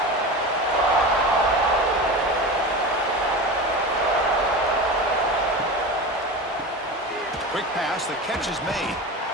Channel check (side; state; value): both; normal; correlation 0.28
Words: Quick pass. The catch is made.